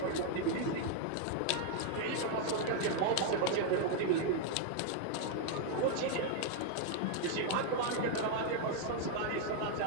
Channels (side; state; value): both; different; correlation 0.00